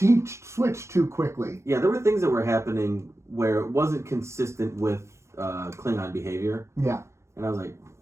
switched too quickly. Yeah, there were things that were happening where it wasn't consistent with Klingon behavior. Yeah. And I was like,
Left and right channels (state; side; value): late; left; 0.13 ms